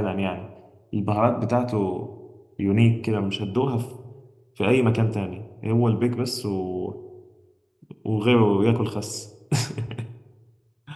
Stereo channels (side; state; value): both; identical; correlation 1.00